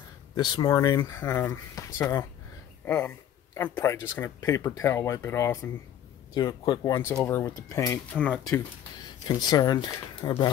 this morning, so I'm probably just gonna paper towel wipe it off and do a quick once over with the paint. I'm not too concerned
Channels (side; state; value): right; quieter; 10.4 dB